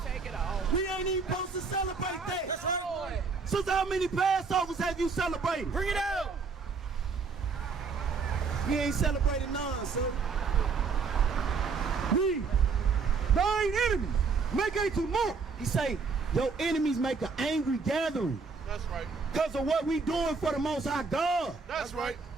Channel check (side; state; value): left; quieter; 4.9 dB